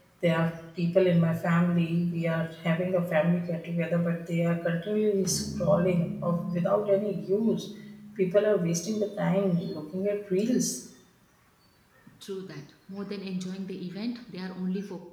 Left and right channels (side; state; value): both; identical; correlation 1.00